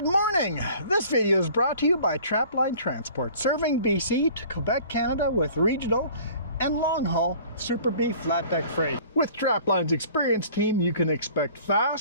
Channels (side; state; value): both; inverted; correlation -0.49